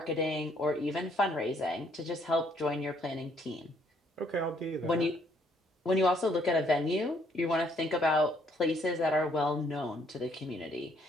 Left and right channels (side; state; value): both; normal; correlation 0.67